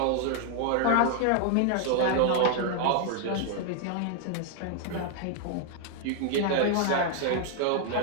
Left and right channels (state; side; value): different; both; correlation 0.00